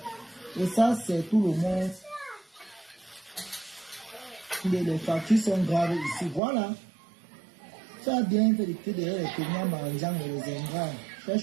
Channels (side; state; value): left; drops out; at 6.4 s